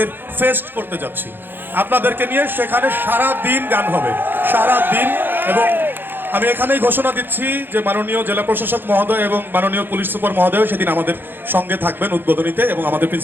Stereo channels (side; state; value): left; late; 0.098 ms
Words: ফেস্ট করতে যাচ্ছি আপনাদেরকে নিয়ে। সেখানে সারা দিন গান হবে, সারা দিন। এবং আমি এখানেই ঘোষণা দিচ্ছি যে মাননীয় জেলা প্রশাসক মহোদয় এবং মাননীয় পুলিশ সুপার মহোদয় সেদিন আমাদের সঙ্গে থাকবেন উদ্বোধনীতে, এবং আমাদের